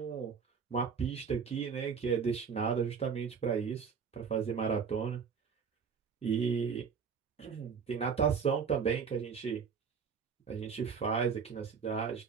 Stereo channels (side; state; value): left; quieter; 6.3 dB